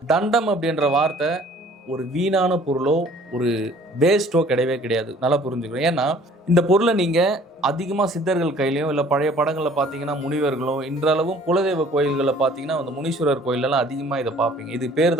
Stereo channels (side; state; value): both; normal; correlation 0.54